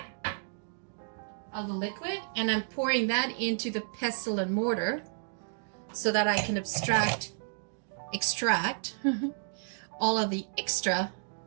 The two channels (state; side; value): silent; left; digital silence